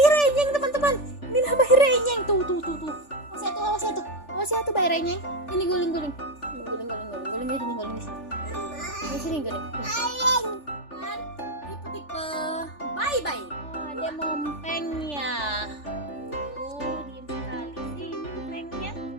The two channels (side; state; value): right; late; 3.4 ms